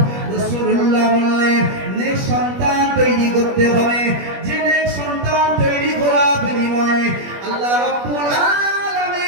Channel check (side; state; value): left; late; 21 ms